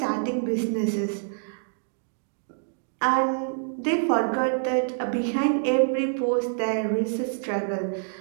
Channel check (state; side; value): silent; left; digital silence